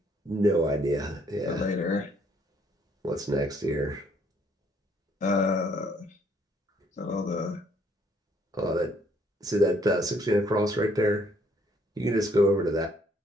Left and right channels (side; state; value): both; normal; correlation 0.66